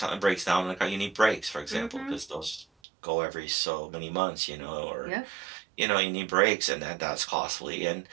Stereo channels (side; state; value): left; drops out; at 2.7 s